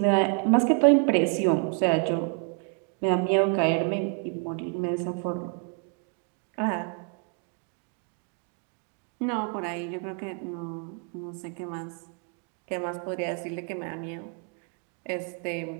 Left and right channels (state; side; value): quieter; left; 39.4 dB